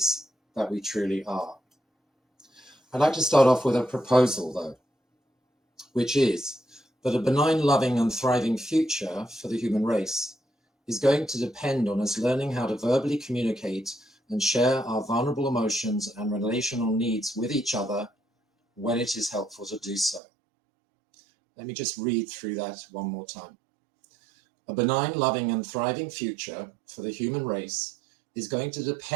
that we truly are. I'd like to start off with a proposal, though, which is that a benign, loving, and thriving future for the human race is going to depend on us learning how to verbally communicate and share our vulnerable emotions and relational needs with each other when it is helpful to do so. Let me just read through that one more time. A benign, loving, and thriving future for the human race is going to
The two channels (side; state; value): left; drops out; at 20.2 s